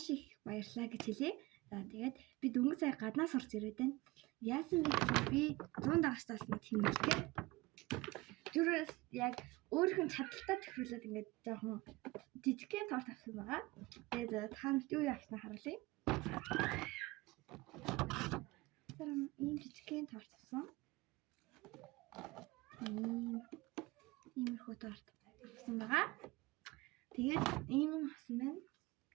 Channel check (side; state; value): left; quieter; 21.1 dB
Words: их баярлалаа гэж хэлье. За, тэгээд би дөнгөж сая гаднаас орж ирээд байна. Яасан бэ гэхээр би 100 дагагчтаас нь тэмдэглэхээр зүрээс яг өөрийнх нь чадaltaа тохируулаад ингээд жоохон жижигхэн торт авсан байгаа. Тэгээд таанд юу явснаа харуулъя. Ийм жижигхэн торт авсан. Иймэрхүү торт авсан байгаа. Тэгээд ийм юм авсан байна.